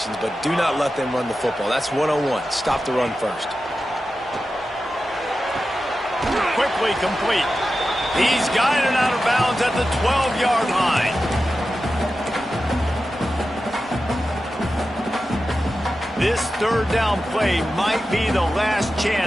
but do not let them run the football. That's 101. Stop the run first. Quickly complete. He's guided out of bounds at the 12-yard line. This third down play might be the last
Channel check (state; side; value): normal; both; correlation 0.92